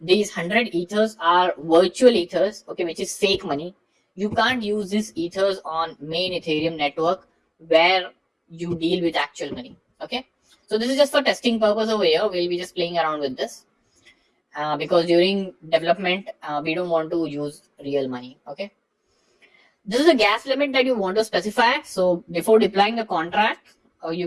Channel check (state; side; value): identical; both; correlation 1.00